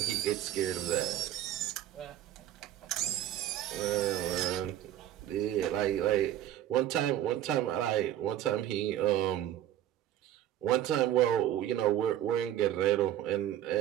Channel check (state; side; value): quieter; left; 12.1 dB